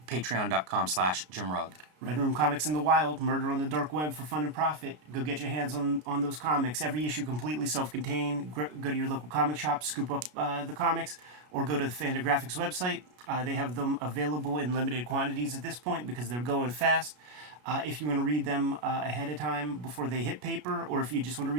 patreon.com/JimRugg. Red Room Comics in the Wild, Murder on the Dark Web for fun and profit. Go get your hands on those comics. Every issue completely self-contained. Go to your local comic shop, scoop up the comics, or go to the Fantagraphics website. They have them available in limited quantities at this point because they're going fast. If you want to read them ahead of time before they hit paper, or if you just want to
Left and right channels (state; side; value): late; left; 33 ms